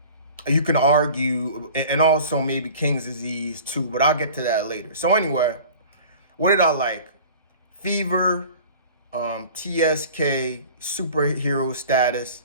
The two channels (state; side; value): inverted; both; correlation -0.42